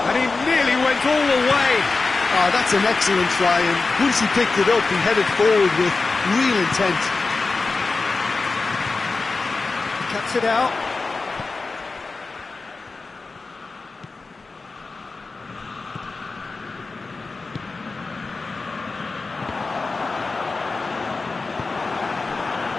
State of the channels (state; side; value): quieter; right; 3.9 dB